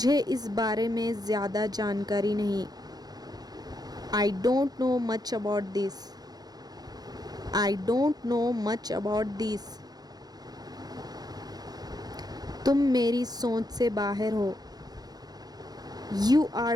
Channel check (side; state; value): left; late; 0.19 ms